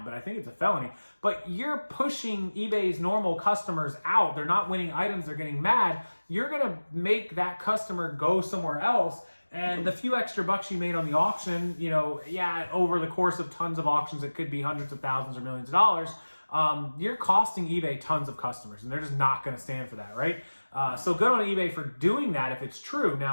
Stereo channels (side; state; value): both; inverted; correlation -1.00